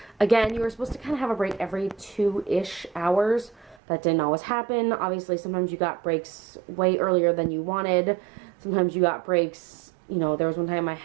again, you were supposed to kind of have a break every 2-ish hours. That didn't always happen. Obviously, sometimes you got breaks way earlier than you wanted. Sometimes you got breaks, you know, there was one time I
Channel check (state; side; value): drops out; left; at 3.8 s